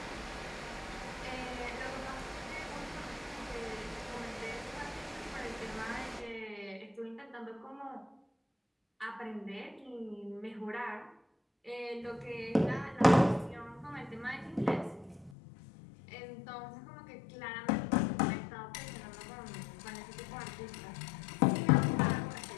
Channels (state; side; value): drops out; right; at 15.4 s